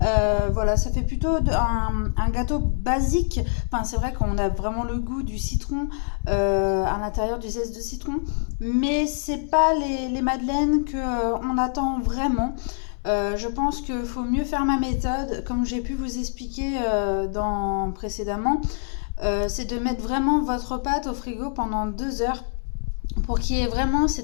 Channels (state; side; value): silent; right; digital silence